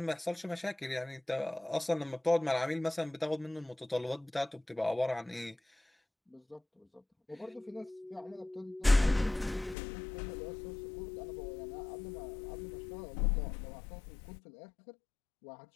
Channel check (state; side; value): drops out; right; at 9.8 s